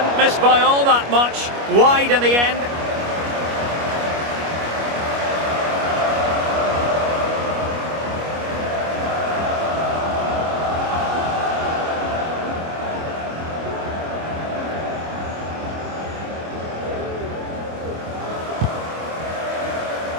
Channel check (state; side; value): late; left; 25 ms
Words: miss by all that much. Wide in the end.